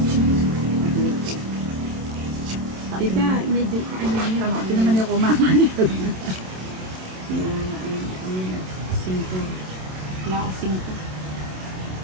Tita, medyo kaanya Ito naman yung kumama niya. Cinco. Wala ka cinco.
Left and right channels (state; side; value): late; left; 27 ms